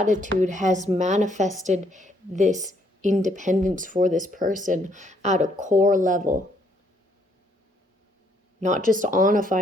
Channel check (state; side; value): normal; both; correlation 0.69